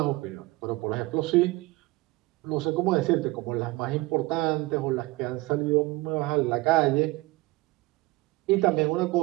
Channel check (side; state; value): left; quieter; 21.0 dB